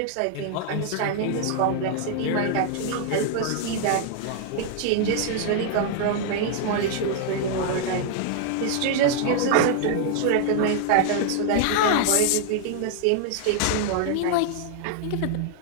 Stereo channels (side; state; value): both; different; correlation 0.00